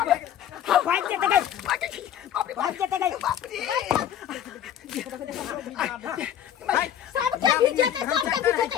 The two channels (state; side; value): quieter; right; 10.2 dB